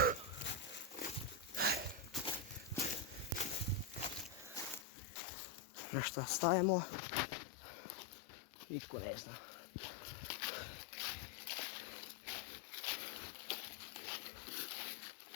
Na šta stajemo? Nitko ne zna.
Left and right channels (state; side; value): drops out; right; at 4.9 s